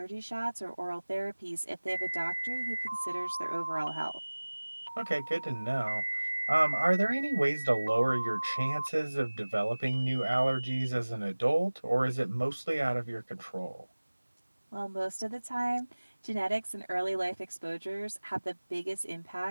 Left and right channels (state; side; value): inverted; both; correlation -1.00